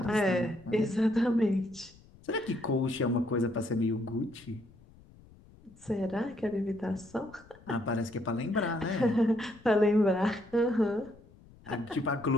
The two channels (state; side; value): noise; left; rumble, 24 dB below the sound